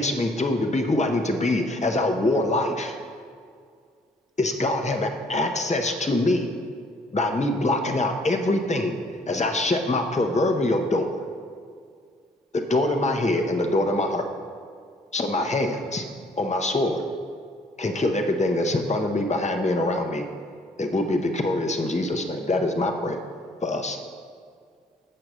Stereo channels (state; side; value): normal; both; correlation 0.60